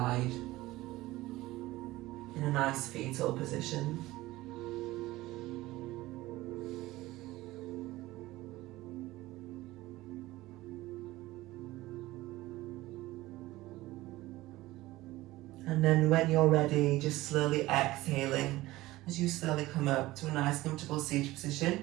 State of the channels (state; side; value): quieter; left; 18.0 dB